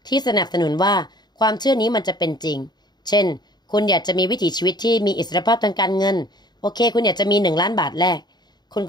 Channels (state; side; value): late; right; 0.20 ms